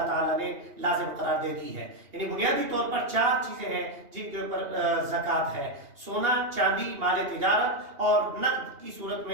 تعالیٰ نے لازم قرار دے دی ہے۔ یعنی بنیادی طور پر 4 چیزیں ہیں جن کے اوپر زکوٰۃ ہے: سونا، چاندی، مال تجارت، اور نقد کی صورت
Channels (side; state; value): left; late; 2.8 ms